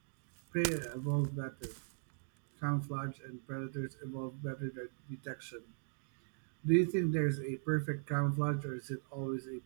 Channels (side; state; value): left; silent; digital silence